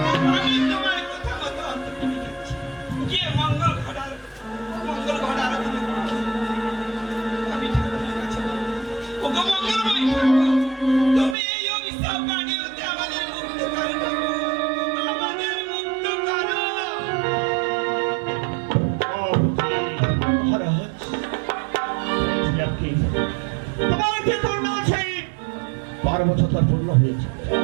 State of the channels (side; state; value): left; drops out; at 11.4 s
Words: আমি তোমার কথা মতো গিয়ে মঙ্গল ঘটার আমি ঠাকুরের কাছে ওগো মঙ্গলময় ঠাকুর, তুমি এই অভিশাপ বাণী হতে আমাদের মুক্ত করো ঠাকুর, আমাদের মুক্ত করো। মহারাজ, তোমার যে করুণা আছে, 12 বছর তার পূর্ণ হয়েছে।